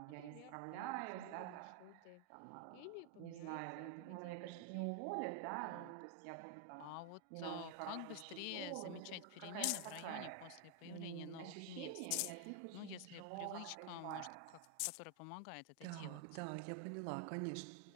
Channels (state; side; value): different; both; correlation 0.00